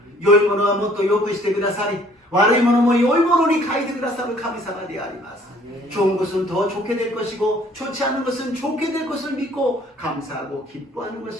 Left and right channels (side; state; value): both; normal; correlation 0.58